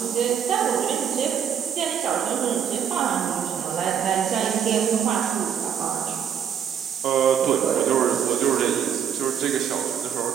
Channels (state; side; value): quieter; left; 8.5 dB